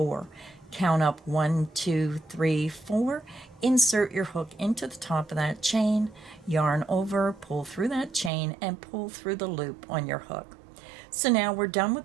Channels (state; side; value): drops out; left; at 8.3 s